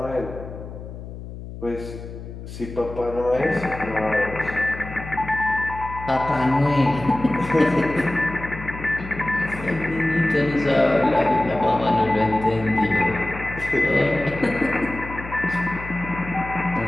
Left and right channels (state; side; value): noise; left; hum, 11 dB below the sound